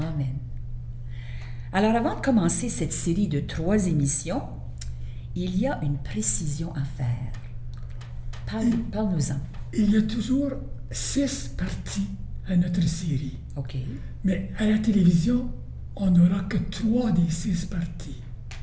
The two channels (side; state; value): both; identical; correlation 1.00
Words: Alors avant de commencer cette série de 3 émissions, il y a une précision à faire. Parle-nous-en. Il y a toujours 6 parties à notre série. OK. Mais à la télévision, on n'aura que 3 des 6 parties.